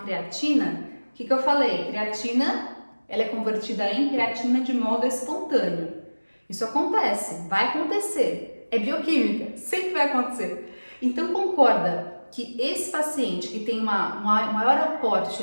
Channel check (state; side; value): inverted; both; correlation -1.00